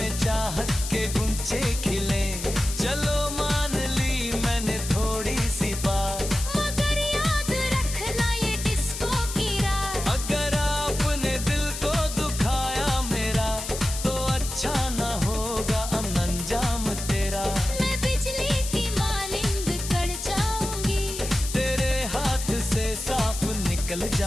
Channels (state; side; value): noise; left; hiss, 7 dB below the sound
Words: चाहत के गुंचे खिले। चलो मान ली मैंने थोड़ी सी बात, मगर याद रखना ये डिस्को की रात। अगर आपने दिल को दुखाया मेरा, तो अच्छा ना होगा अंजाम तेरा। मैं बिजली की मानिंद कड़ जाऊंगी, तेरे हाथ से साफ निकल